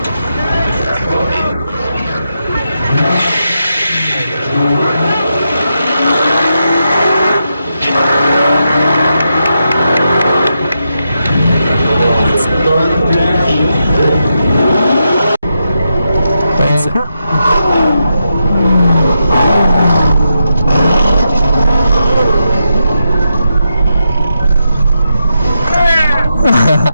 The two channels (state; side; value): inverted; both; correlation -0.85